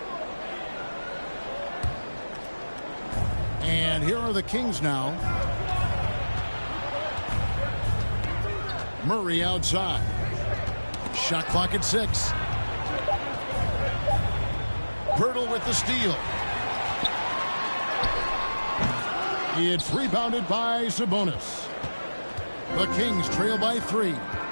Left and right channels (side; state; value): both; inverted; correlation -1.00